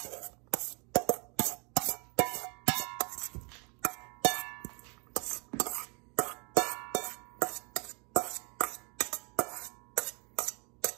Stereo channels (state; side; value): quieter; left; 32.8 dB